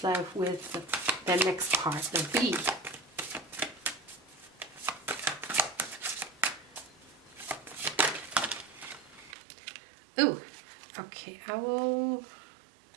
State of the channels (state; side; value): drops out; left; at 9.3 s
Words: life with their next partner be? Ooh. Okay, I